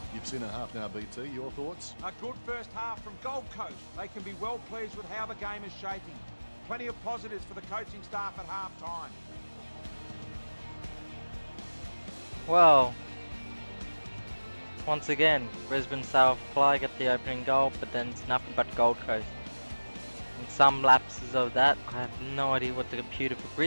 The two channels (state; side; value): inverted; both; correlation -1.00